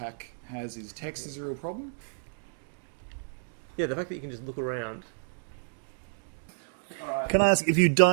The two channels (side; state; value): left; silent; digital silence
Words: has is text is a real problem. Yeah, the fact that you can just look around. Can I ask, if you